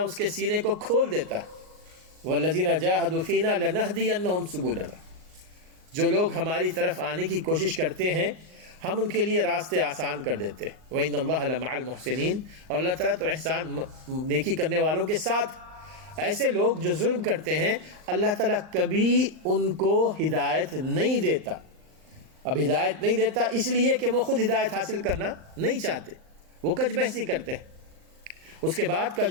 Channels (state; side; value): late; left; 39 ms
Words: اس کے سینے کو کھول دیتا ہے. وَالَّذِينَ جَاهَدُوا فِينَا لَنَهْدِيَنَّهُمْ سُبُلَنَا. جو لوگ ہماری طرف آنے کی کوشش کرتے ہیں ہم ان کے لیے راستے آسان کر دیتے ہیں۔ وَإِنَّ اللَّهَ لَمَعَ الْمُحْسِنِينَ، اور اللہ تعالیٰ تو احسان نیکی کرنے والوں کے ساتھ۔ ایسے لوگ جو ظلم کرتے ہیں اللہ تعالیٰ کبھی ان کو ہدایت نہیں دیتا۔ اب ہدایت نہیں دیتا اس لیے کہ وہ خود ہدایت حاصل کرنا نہیں چاہتے، وہ کج بحثی کرتے ہیں۔ اس کے بعد کا